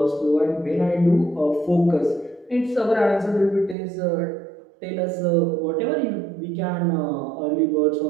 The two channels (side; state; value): left; drops out; at 3.8 s